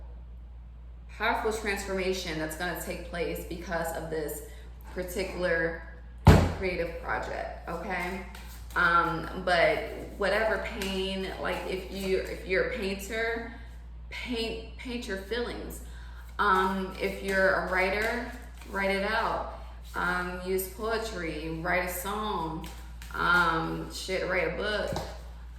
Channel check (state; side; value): identical; both; correlation 1.00